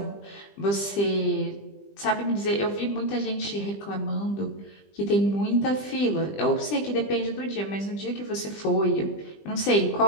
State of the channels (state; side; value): late; right; 20 ms